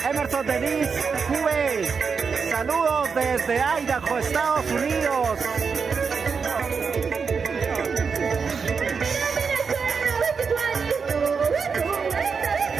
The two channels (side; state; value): left; quieter; 5.6 dB